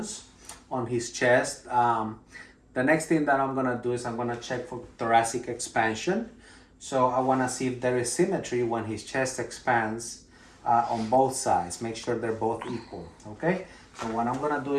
on his chest. The next thing that I'm gonna do is I'm gonna check for thoracic expansion. So I wanna see if there is symmetry when his chest expands on both sides. Make sure they're both equal, okay? So what I'm gonna do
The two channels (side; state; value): both; identical; correlation 1.00